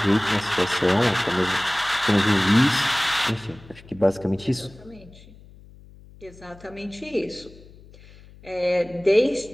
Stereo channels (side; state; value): left; noise; hum, 22 dB below the sound